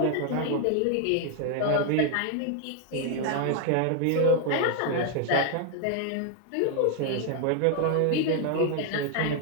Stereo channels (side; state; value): both; different; correlation 0.00